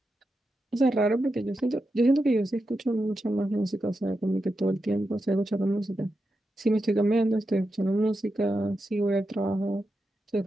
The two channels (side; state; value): both; normal; correlation 0.88